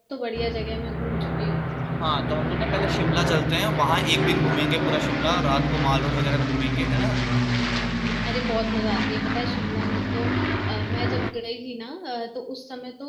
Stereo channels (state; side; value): identical; both; correlation 1.00